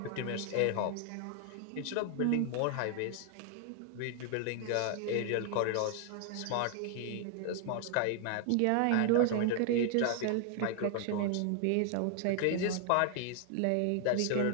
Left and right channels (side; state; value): both; different; correlation 0.00